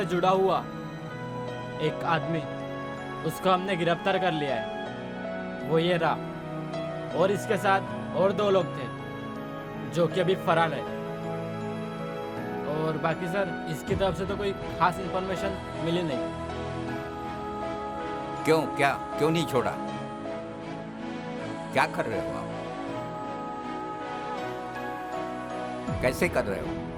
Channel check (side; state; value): left; noise; hum, 25 dB below the sound